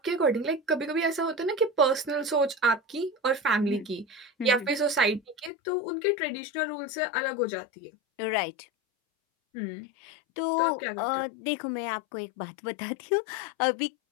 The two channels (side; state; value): right; drops out; at 5.5 s